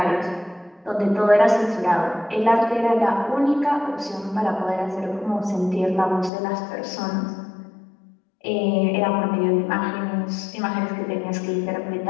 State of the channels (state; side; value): drops out; right; at 6.3 s